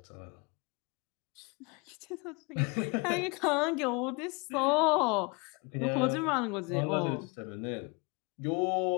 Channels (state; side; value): quieter; right; 29.5 dB